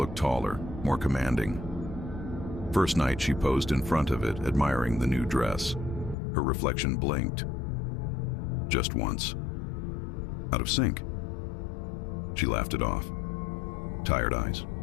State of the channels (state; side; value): drops out; right; at 6.2 s